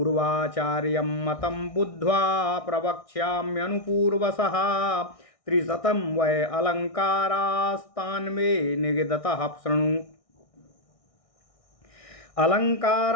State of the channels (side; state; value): right; late; 1.6 ms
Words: मतं बुद्ध्वा प्रवक्ष्याम्यनुपूर्वसः त्रिशतं वै अलङ्कारास्तान् मे निगदतः शृणु।